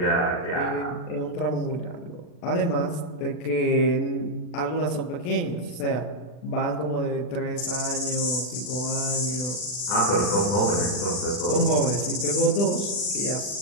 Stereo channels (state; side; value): late; right; 40 ms